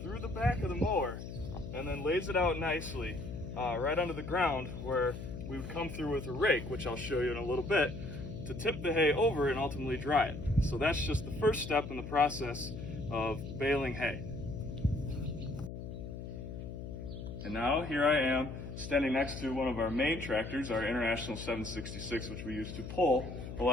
through the back of the mower and then lays it out nicely right onto the ground, where we would come through with a rake, which I'll show you in a little bit, to tip the hay over and ultimately dry it. So that's just the first step in the process of baling hay. And now here I am standing next to one of our main tractors, our International 766, which we use to pull a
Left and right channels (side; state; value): left; noise; hum, 8 dB below the sound